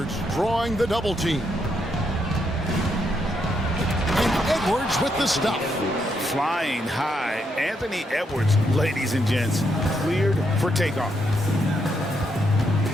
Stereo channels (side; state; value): both; normal; correlation 0.78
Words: drawing the double team. And Edwards with the stuff. Flying high. Anthony Edwards, ladies and gents, cleared for takeoff.